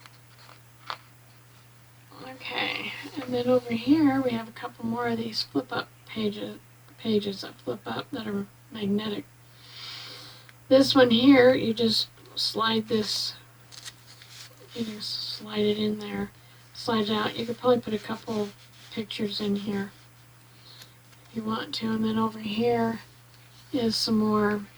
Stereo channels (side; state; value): both; identical; correlation 1.00